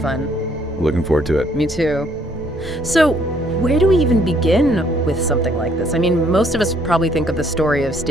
Looking forward to it. Me too. So, where do we even begin with something like this? I mean, most of us probably think of the story of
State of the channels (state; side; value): normal; both; correlation 0.66